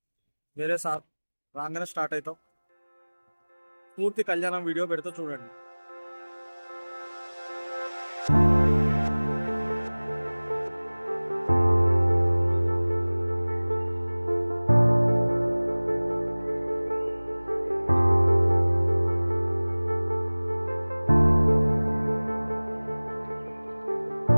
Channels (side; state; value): both; inverted; correlation -1.00